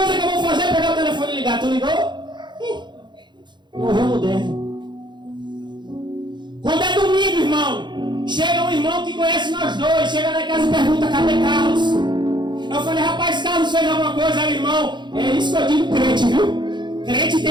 que eu vou fazer é pegar o telefone e ligar. Tu ligou? Morreu moderno. Quando é domingo, irmão, chega um irmão que conhece nós dois, chega lá em casa e pergunta, cadê Carlos? Eu falei, rapaz, Carlos fez alguma coisa? Aí, irmão, é isso que eu digo crente, viu? Crente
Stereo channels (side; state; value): left; late; 0.22 ms